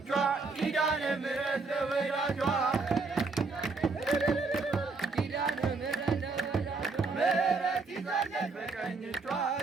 ኪዳነ ምሕረት ለወዳጇ ምሕረት ይዛለች በቀኝ እጇ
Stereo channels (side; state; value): left; quieter; 4.1 dB